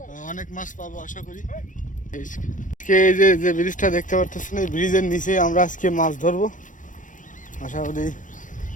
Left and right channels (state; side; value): late; right; 0.37 ms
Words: অনেক মাছ পাবো আশা করি। আজকে এই যে ব্রিজটা দেখতে পাচ্ছেন, এই ব্রিজের নিচে আমরা আজকে মাছ ধরবো আশা করি।